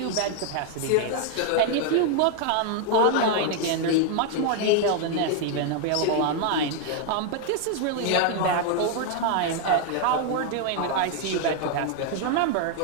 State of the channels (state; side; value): different; both; correlation 0.01